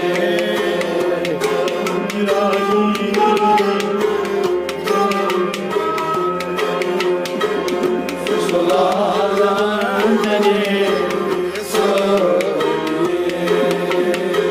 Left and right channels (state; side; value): identical; both; correlation 1.00